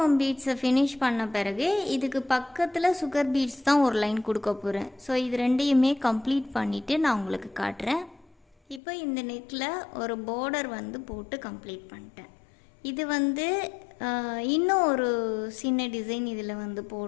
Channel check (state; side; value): drops out; right; at 8.8 s